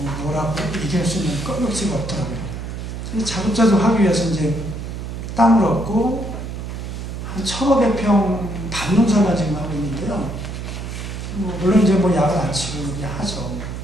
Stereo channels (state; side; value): noise; right; hum, 7 dB below the sound